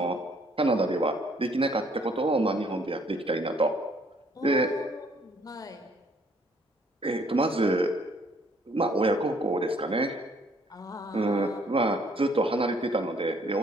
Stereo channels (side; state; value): both; normal; correlation 0.64